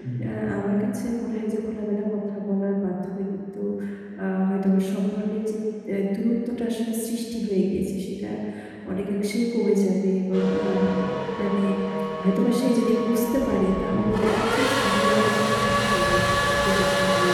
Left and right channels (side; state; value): both; identical; correlation 1.00